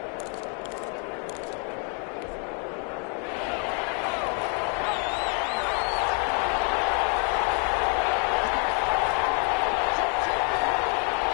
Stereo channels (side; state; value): right; quieter; 38.8 dB